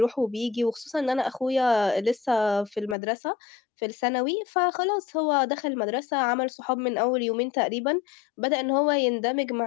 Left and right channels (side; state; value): right; drops out; at 3.0 s